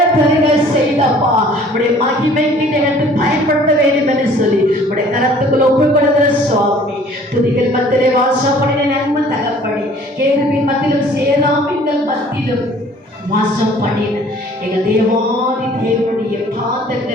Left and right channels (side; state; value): both; normal; correlation 0.53